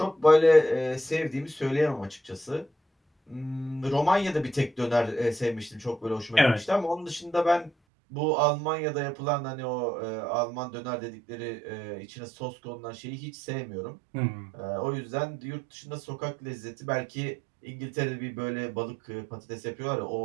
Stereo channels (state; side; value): drops out; left; at 7.7 s